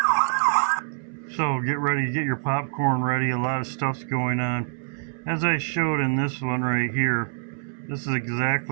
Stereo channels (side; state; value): left; silent; 62 dB below the other